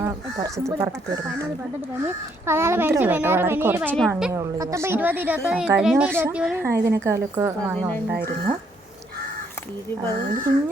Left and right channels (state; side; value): normal; both; correlation 0.71